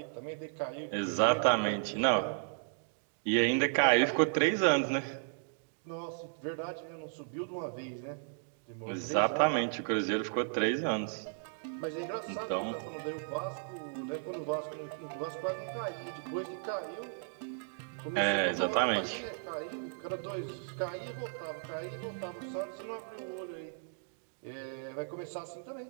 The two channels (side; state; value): left; silent; digital silence